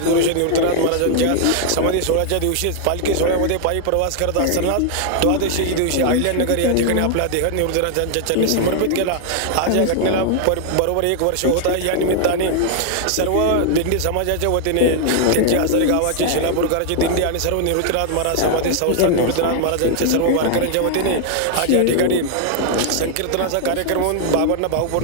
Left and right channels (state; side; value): different; both; correlation 0.00